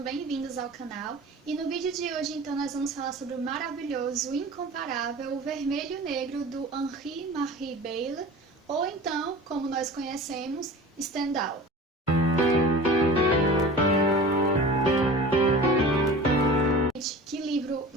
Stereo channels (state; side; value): normal; both; correlation 0.38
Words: ao canal. E no vídeo de hoje, então, nós vamos falar sobre o maravilhoso, incomparável, o Vermelho e Negro do Henri-Marie Beyle, ou então, como nós conhecemos, Stendhal. Que livro